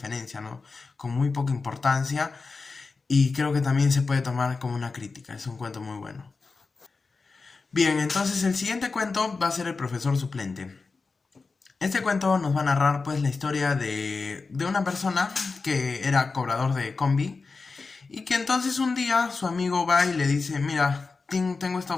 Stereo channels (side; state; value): right; quieter; 4.2 dB